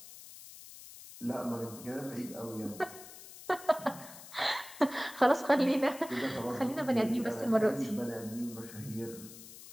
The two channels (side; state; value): left; noise; hiss, 16 dB below the sound